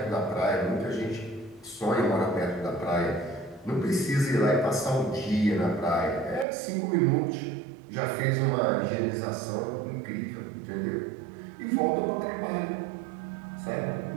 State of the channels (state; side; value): drops out; left; at 6.5 s